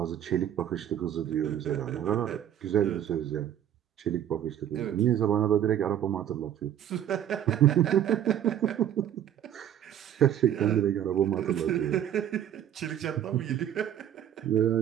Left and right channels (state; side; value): quieter; left; 10.5 dB